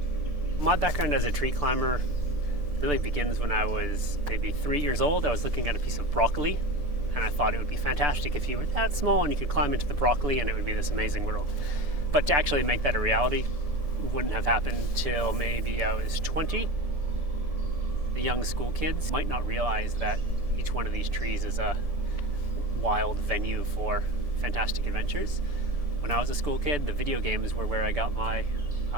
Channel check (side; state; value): left; late; 1.7 ms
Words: My background as a tree climber really begins when I was maybe 3 years old. I was looking at a piece of broccoli, and I thought it would be fantastic if you were that small and you could climb into the broccoli and it would be this amazing world. But to actually make that a reality wouldn't have happened till maybe I was 20. The young school kids might not realize that each one of these trees is a wild venue for fantastic adventures. When I was a school kid, the video games were where I got my